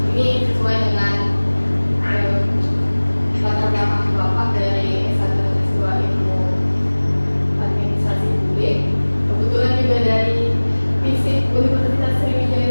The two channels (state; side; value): inverted; both; correlation -1.00